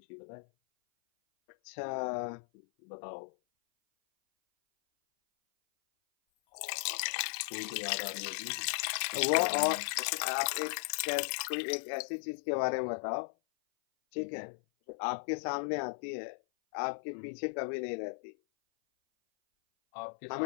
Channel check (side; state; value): right; silent; 54 dB below the other